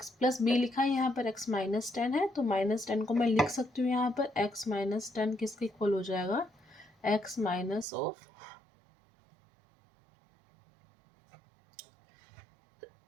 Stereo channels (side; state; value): left; drops out; at 7.9 s